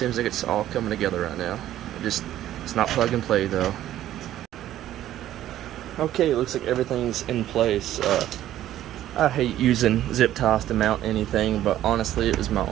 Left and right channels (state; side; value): quieter; left; 12.8 dB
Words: like it's all coming together right now. It's not plug and play though. Okay, it looks like everything's in place. I hate using zip ties to mount anything, but honestly it was my